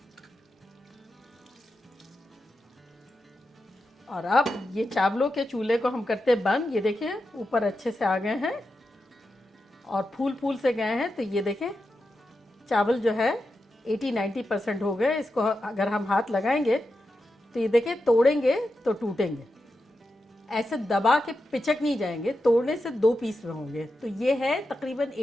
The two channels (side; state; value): both; normal; correlation 0.89